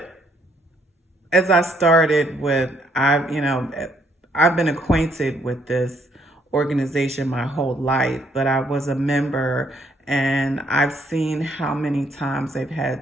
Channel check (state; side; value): normal; both; correlation 0.68